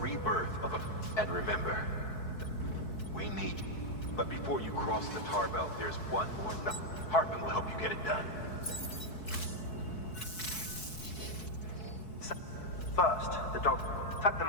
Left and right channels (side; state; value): right; late; 4.6 ms